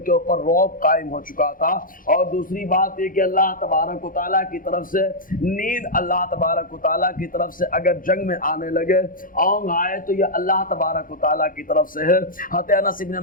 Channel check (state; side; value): late; right; 0.40 ms